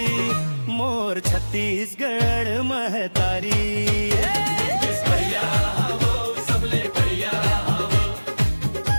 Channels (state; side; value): inverted; both; correlation -1.00